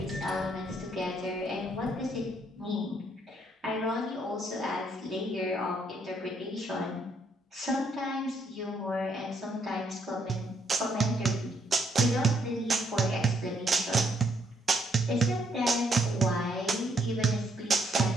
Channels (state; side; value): normal; both; correlation 0.72